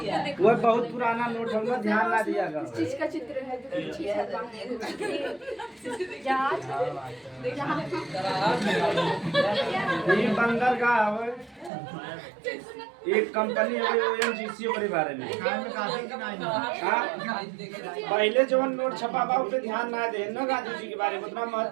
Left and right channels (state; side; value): drops out; left; at 11.7 s